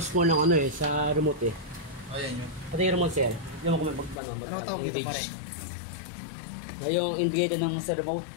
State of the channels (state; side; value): drops out; right; at 4.2 s